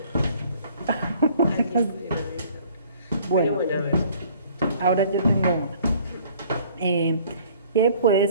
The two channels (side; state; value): both; inverted; correlation -0.55